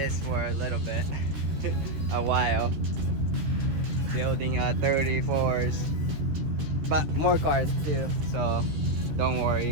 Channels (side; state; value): left; late; 13 ms